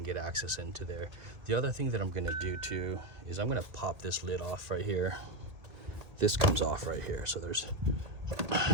get access into there. The other thing that I'm gonna do too is I'm gonna pop this lid off right here. This comes off right here, so there's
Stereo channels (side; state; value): left; late; 2.1 ms